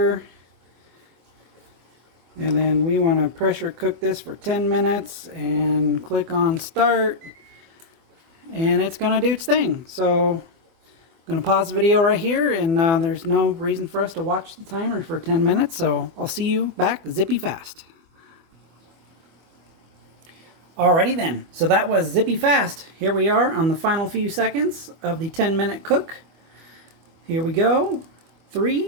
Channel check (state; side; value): late; left; 25 ms